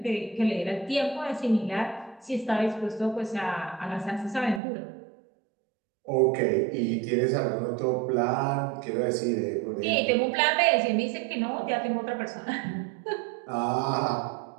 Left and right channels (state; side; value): drops out; left; at 4.6 s